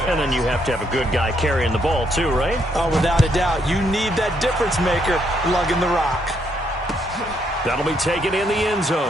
And then you have to have a good guy carrying the ball too, right? Oh, without a doubt. You need that difference maker lugging the rock. That'll be taken in the end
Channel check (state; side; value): normal; both; correlation 0.74